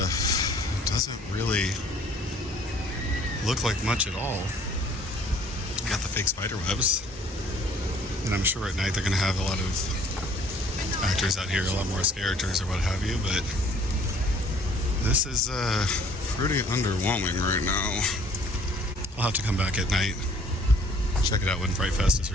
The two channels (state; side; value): normal; both; correlation 0.56